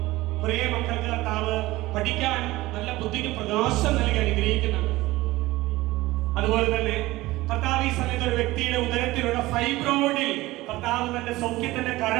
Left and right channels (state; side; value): quieter; left; 18.7 dB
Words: പ്രിയ മക്കൾക്ക് കർത്താവ് പഠിക്കാൻ നല്ല ബുദ്ധിക്ക് പ്രകാശം നൽകി അനുഗ്രഹിക്കുന്നുണ്ട്. അതുപോലെ തന്നെ കർത്താവ് ഈ സമയത്ത് ഒരു വ്യക്തിയുടെ ഉദരത്തിലുള്ള ഫൈബ്രോയിഡിൽ കർത്താവ് തന്റെ സൗഖ്യത്തിന്റെ